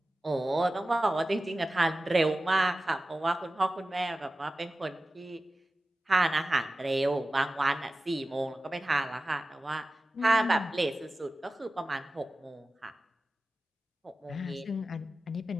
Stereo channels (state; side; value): normal; both; correlation 0.95